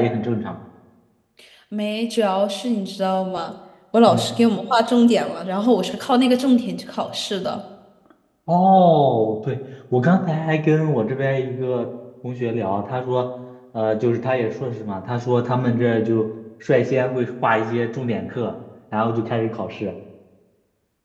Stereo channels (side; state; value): both; identical; correlation 1.00